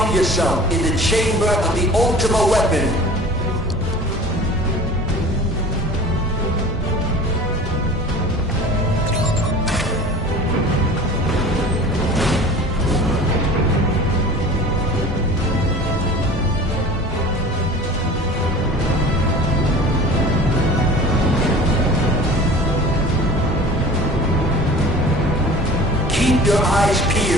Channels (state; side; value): normal; both; correlation 0.41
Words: yourself in the chamber of the Ultima weapon. Keep your eyes